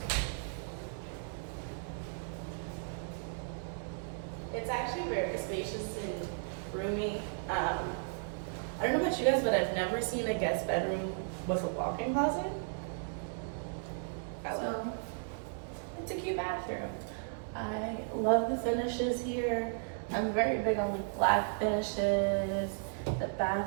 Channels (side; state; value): left; silent; digital silence